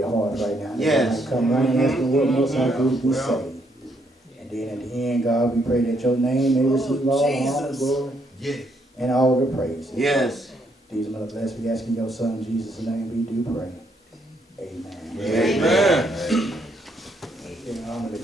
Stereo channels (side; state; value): both; normal; correlation 0.73